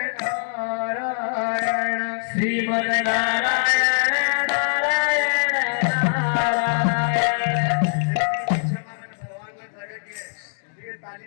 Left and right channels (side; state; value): right; silent; digital silence